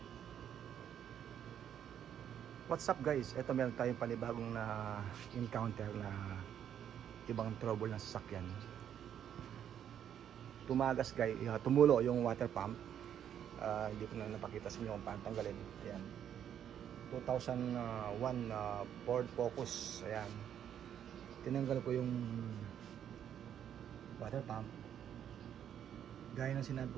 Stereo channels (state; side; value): quieter; left; 9.5 dB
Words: What's up guys? Ito meron tayong panibagong na encounter na ibang trouble ng sasakyan. Tumagas guys, tumulo yung water pump. Hindi ko na napakita sa inyo kung paano tanggalin. Ayan, 2001 Ford Focus. Ayan, tinanggal ko yung water pump. Gaya ng sinabi